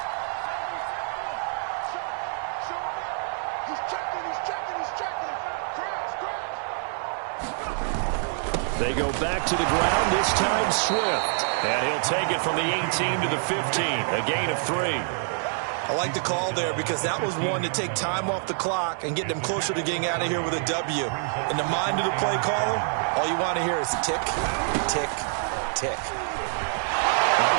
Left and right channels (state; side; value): silent; left; 60 dB below the other